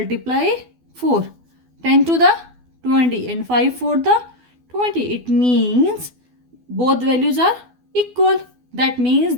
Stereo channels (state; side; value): late; left; 12 ms